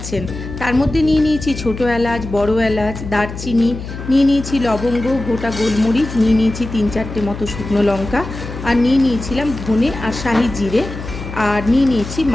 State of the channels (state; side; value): noise; left; hum, 9 dB below the sound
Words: তার মধ্যে নিয়ে নিয়েছি ছোটো এলাচ, বড় এলাচ, দারচিনি, নিয়ে নিয়েছি লবঙ্গ, গোটা গোলমরিচ, নিয়ে নিয়েছি 3-4টে মতো শুকনো লঙ্কা, আর নিয়ে নিয়েছিলাম ধনে আর শাহি জিরে, আর নিয়ে নিয়েছি